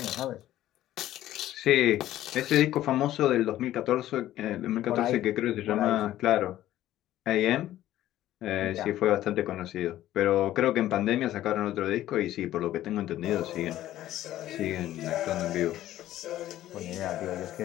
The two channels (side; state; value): right; quieter; 13.7 dB